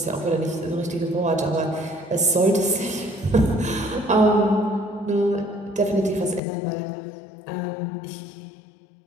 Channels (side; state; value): right; drops out; at 6.4 s